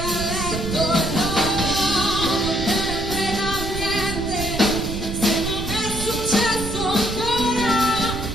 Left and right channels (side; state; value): right; noise; rumble, 6 dB below the sound